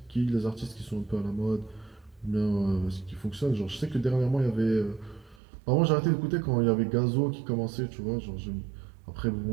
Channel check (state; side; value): drops out; left; at 5.4 s